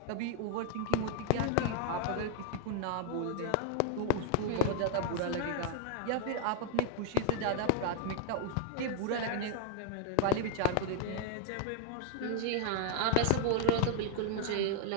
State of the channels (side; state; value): both; different; correlation -0.01